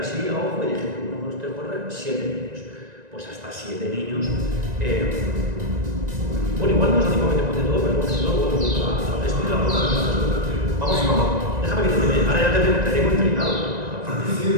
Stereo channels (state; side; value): late; left; 1.9 ms